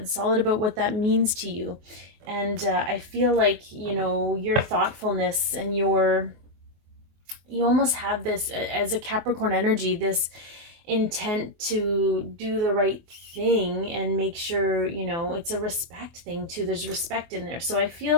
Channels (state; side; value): late; left; 24 ms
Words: solid about what that means to you. And I feel like, you know, your thoughtfulness and you almost have this, as a Capricorn energy, this intent to do the right thing and make sure, you know, it's a respect thing too. There's respect in there. So I